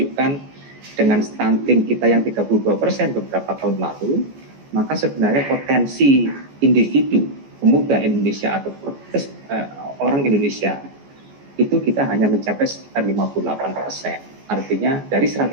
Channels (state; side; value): late; left; 14 ms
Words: dengan stunting kita yang 32% beberapa tahun lalu, maka sebenarnya potensi individu pemuda Indonesia atau orang Indonesia itu kita hanya mencapai sekitar 58%. Artinya dari